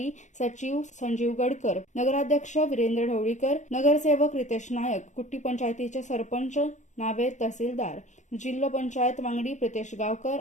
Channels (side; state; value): right; late; 0.35 ms